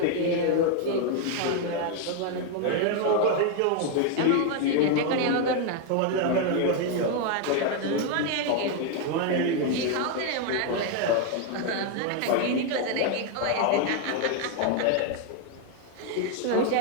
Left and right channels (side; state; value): both; different; correlation 0.01